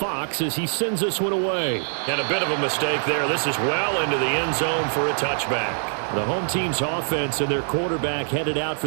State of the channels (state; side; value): silent; left; digital silence